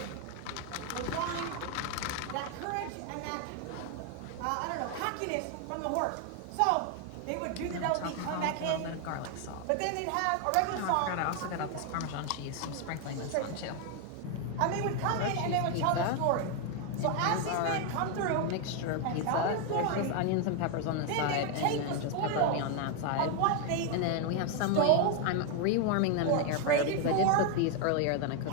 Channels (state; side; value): different; both; correlation 0.01